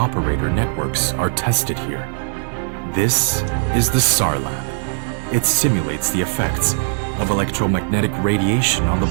networks are tested here. This is the Sar Lab. It simulates the effects of electromagnetic radiation on the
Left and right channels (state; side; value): silent; left; 59 dB below the other